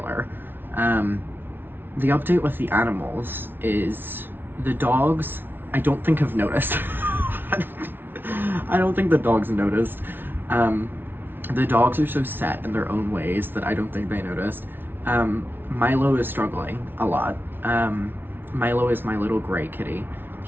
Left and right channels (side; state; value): left; late; 0.10 ms